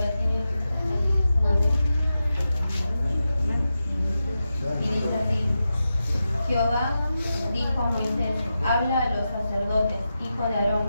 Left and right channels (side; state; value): both; inverted; correlation -0.90